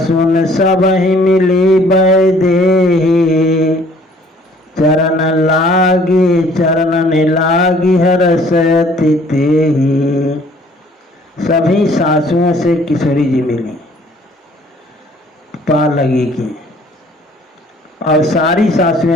सब ही मिली बैदेही, चरण लागी हरसति तेहि। सभी सासुओं से किशोरी जी मिली, पा लगी की। और सारी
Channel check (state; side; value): normal; both; correlation 0.57